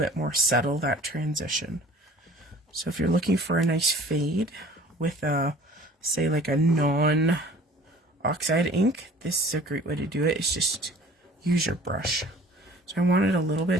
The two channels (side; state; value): both; normal; correlation 0.48